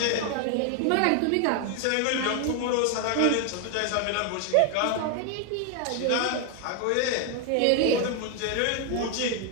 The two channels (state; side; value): different; both; correlation 0.00